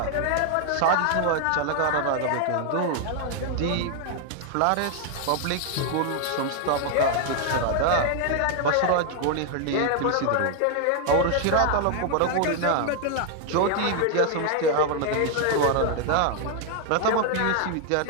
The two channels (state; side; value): different; both; correlation 0.00